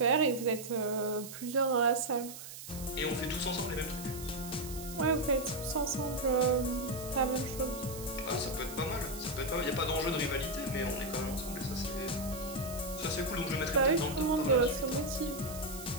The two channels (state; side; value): noise; right; hiss, 12 dB below the sound